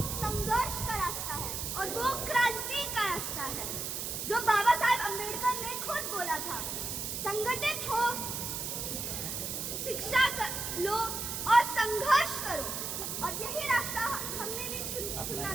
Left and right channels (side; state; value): right; noise; hiss, 4 dB below the sound